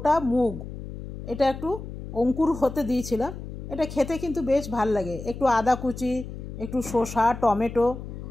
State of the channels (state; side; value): noise; left; hum, 10 dB below the sound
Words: মুগ, এটা একটু অঙ্কুর হতে দিয়েছিলাম। এটা খেতে কিন্তু বেশ ভাল লাগে। একটু আদা কুচি, একটু শসা, টমেটো,